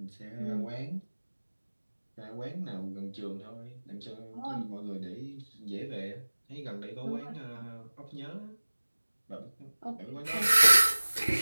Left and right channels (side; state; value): both; inverted; correlation -1.00